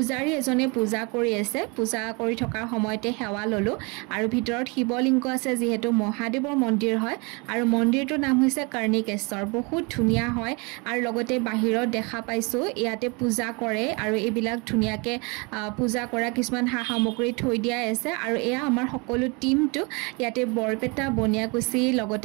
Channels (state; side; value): quieter; left; 29.8 dB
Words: এজনে পূজা কৰি আছে পূজা কৰি থকাৰ সময়তে সেৱা ল'লোঁ আৰু ভিতৰত শিৱলিংগ আছে যিহেতু মহাদেৱৰ মন্দিৰ হয় আৰু মন্দিৰটোৰ নাম হৈছে কৰ্ণিকেশ্বৰ বহুত ধুনীয়া হয় আৰু লগতে বাহিৰত দেখা পাইছোঁ ইয়াতে পূজা কৰে আৰু এইবিলাক ধুনীয়াকৈ পূজা কৰা কিছুমান সা সামগ্ৰী থৈ দিয়াই আছে আৰু এয়া আমাৰ সকলো টিমটো ইয়াতে বৰপেটা বনিয়াকুছি